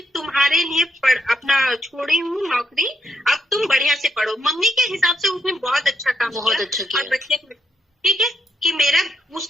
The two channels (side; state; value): both; normal; correlation 0.77